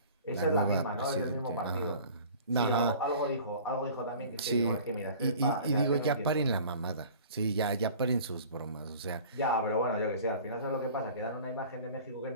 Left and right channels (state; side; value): inverted; both; correlation -0.45